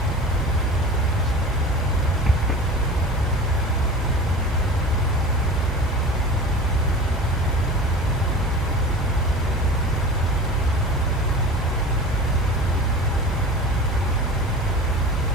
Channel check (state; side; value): normal; both; correlation 0.35